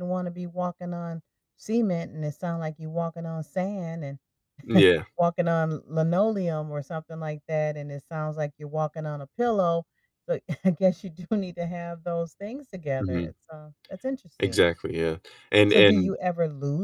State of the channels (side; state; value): both; identical; correlation 1.00